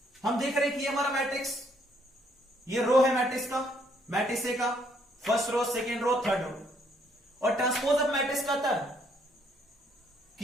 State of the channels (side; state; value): both; normal; correlation 0.68